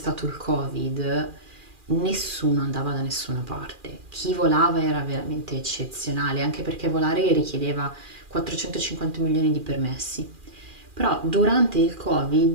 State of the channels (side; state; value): left; late; 2.4 ms